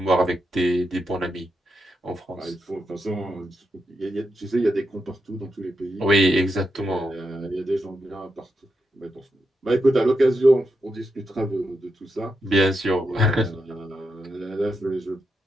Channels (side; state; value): both; normal; correlation 0.85